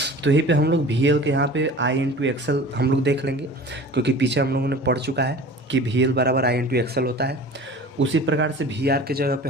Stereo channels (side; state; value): both; normal; correlation 0.41